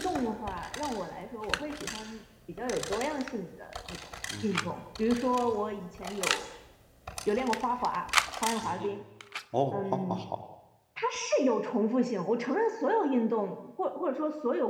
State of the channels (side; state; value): both; identical; correlation 1.00